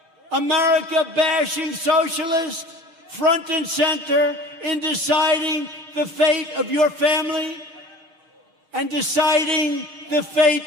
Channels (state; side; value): late; left; 6.6 ms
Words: America-bashing socialist front and center in deciding the fate of your family and deciding the fate